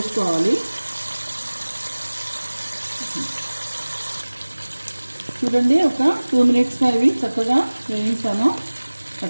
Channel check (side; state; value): both; inverted; correlation -1.00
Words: చూడండి, ఒక 2 minutesగా ఇవి చక్కగా వేయించాను.